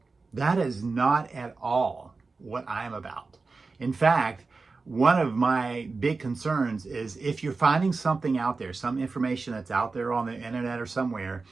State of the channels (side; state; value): left; quieter; 4.1 dB